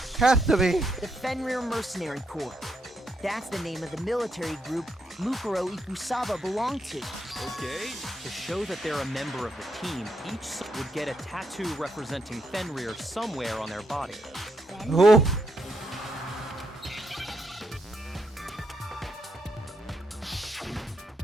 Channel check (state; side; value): normal; both; correlation 0.79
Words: Has to be. The Fenrir Mercenary Corps. That's the name of the military group Mukuro Ikusaba belonged to. Okay. To show that they're a member of the team, each would get a tattoo representing Fenrir somewhere on their body. Oh.